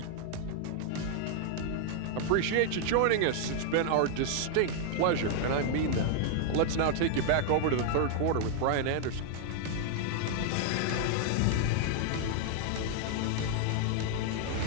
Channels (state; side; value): different; both; correlation 0.00